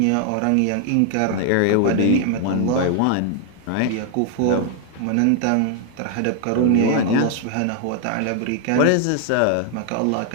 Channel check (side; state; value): both; different; correlation 0.00